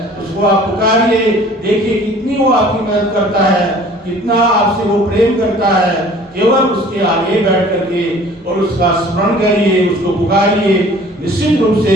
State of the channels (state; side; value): normal; both; correlation 0.50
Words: उसको आप पुकारिए, देखिए कितनी वो आपकी मदद करता है, कितना आपसे वो प्रेम करता है। केवल उसके आगे बैठ करके और उसका स्मरण करिए, उसको पुकारिए, निश्चित रूप